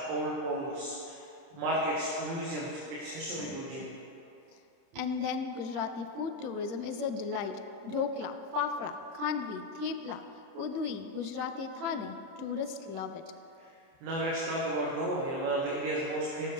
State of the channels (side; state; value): left; late; 30 ms